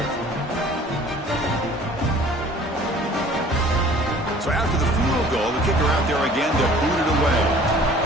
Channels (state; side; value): normal; both; correlation 0.50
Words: So after the field goal, the kicker out there again to boot it away.